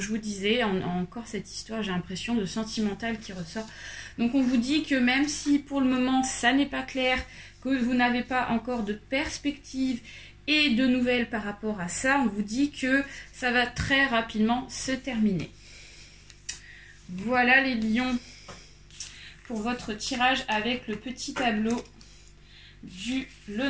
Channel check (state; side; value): identical; both; correlation 1.00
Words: je vous disais, encore cette histoire, j'ai l'impression de sentimental qui ressort. Donc, on vous dit que même si pour le moment, ça n'est pas clair, que vous n'avez pas encore de perspective et de nouvelles par rapport à ça, on vous dit que ça va très rapidement se terminer. Voilà les lions pour votre tirage avec le petit tableau du